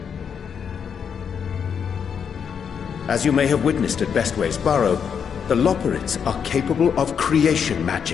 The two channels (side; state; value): right; quieter; 7.2 dB